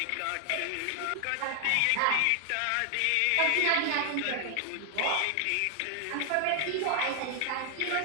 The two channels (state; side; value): different; both; correlation 0.00